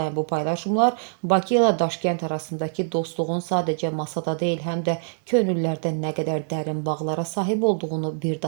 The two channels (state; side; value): silent; left; digital silence